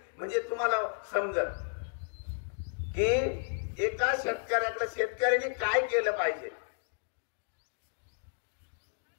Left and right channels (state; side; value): silent; right; digital silence